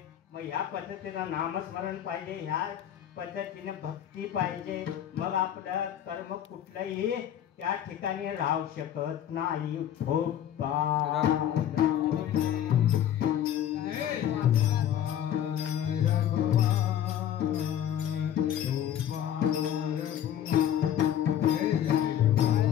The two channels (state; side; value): quieter; right; 10.5 dB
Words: मग ह्या पद्धतीनं नामस्मरण पाहिजे, ह्या पद्धतीने भक्ती पाहिजे, मग आपलं कर्म कुठलंही त्या ठिकाणी राहू शकत नाही.